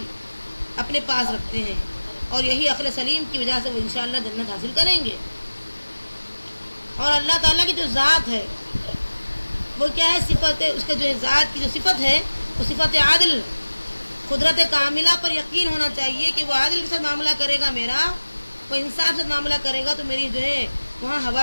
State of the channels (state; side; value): inverted; both; correlation -1.00